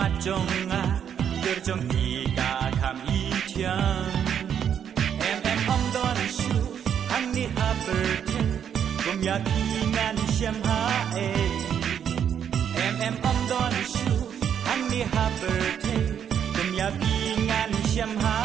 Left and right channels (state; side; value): quieter; left; 8.6 dB